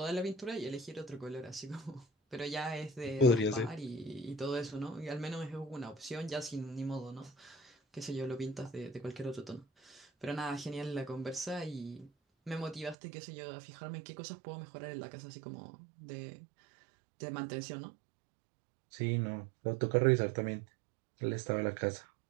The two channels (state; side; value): drops out; left; at 13.0 s